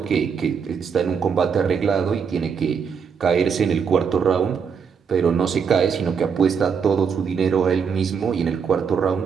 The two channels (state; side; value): quieter; left; 6.5 dB